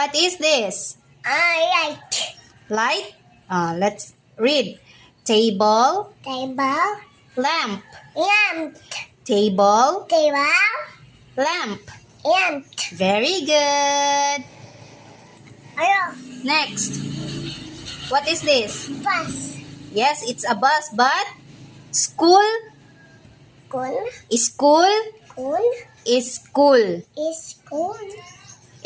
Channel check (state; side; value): identical; both; correlation 1.00